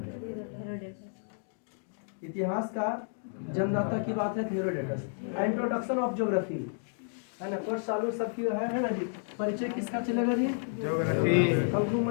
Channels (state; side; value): silent; right; digital silence